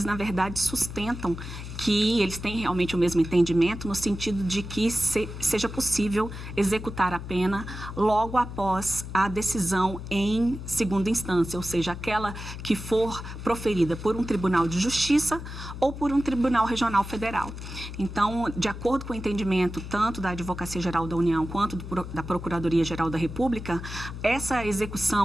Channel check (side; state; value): left; noise; hum, 9 dB below the sound